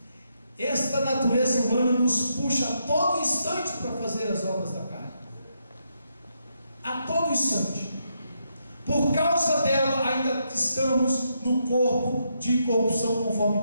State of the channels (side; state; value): both; inverted; correlation -0.79